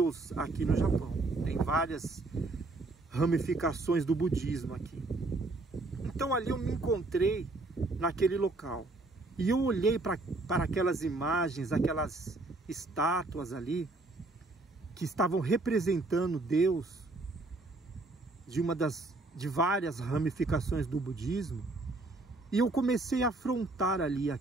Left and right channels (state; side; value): quieter; left; 3.1 dB